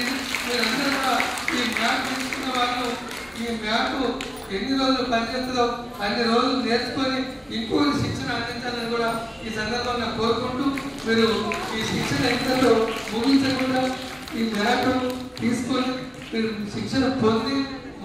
మీరందరూ కూడా ఈ మ్యాట్ తీసుకున్న వాళ్ళు ఈ మ్యాట్ ఎన్ని రోజులు పనిచేస్తుందో అన్ని రోజులు నేర్చుకొని ఇంకొక శిక్షణ అందించాలని కూడా ఈ సందర్భంగా కోరుకుంటూ, మీరు ఈ శిక్షణ ఎంతలో ముగించకుండా ఈ మ్యాట్ తీసుకొని మీరు శిక్షణ పొంది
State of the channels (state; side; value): identical; both; correlation 1.00